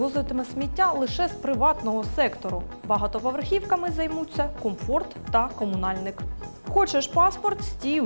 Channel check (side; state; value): both; inverted; correlation -1.00